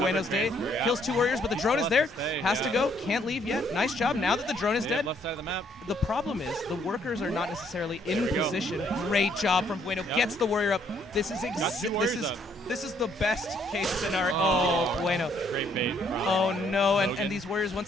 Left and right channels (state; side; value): normal; both; correlation 0.68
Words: day. Kills 2 warriors, but the drone is there. Has to go. Can't leave yet. Nice job. Now that the drone is dead. Left side of the map. The problem is the workers are not necessarily in position. Great job from Bueno. Gets the warrior up. This is this is the best case scenario. Oh, Bueno. Great bait. Oh no, and these warriors